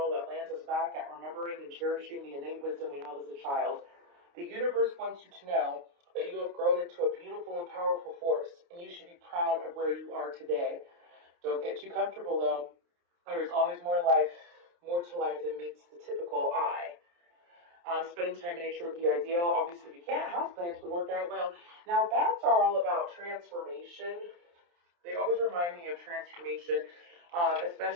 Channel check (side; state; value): left; late; 29 ms